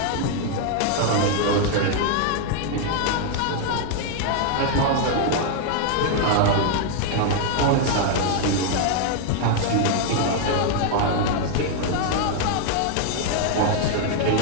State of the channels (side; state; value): both; different; correlation 0.00